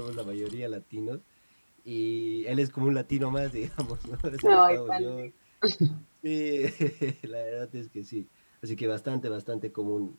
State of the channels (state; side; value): inverted; both; correlation -1.00